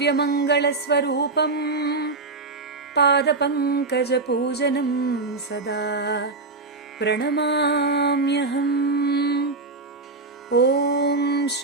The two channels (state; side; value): quieter; left; 3.6 dB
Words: స్వరూపం పాదపంకజ పూజనం సదా ప్రణమామ్యహం. ఓం